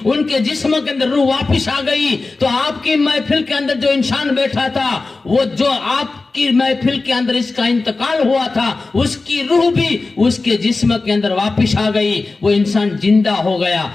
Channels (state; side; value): quieter; right; 3.7 dB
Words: उनके जिस्म के अंदर रूह वापस आ गई। तो आपकी महफिल के अंदर जो इंसान बैठा था, वो जो आपकी महफिल के अंदर इसका इंतकाल हुआ था, उसकी रूह भी उसके जिस्म के अंदर वापस आ गई। वो इंसान जिंदा हो गया।